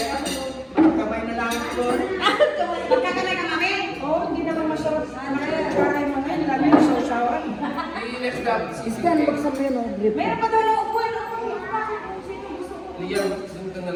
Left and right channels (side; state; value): both; identical; correlation 1.00